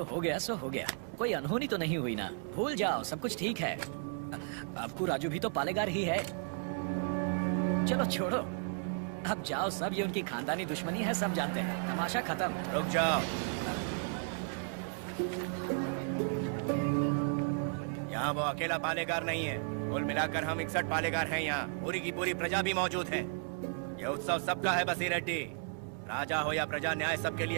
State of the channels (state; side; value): silent; left; 55 dB below the other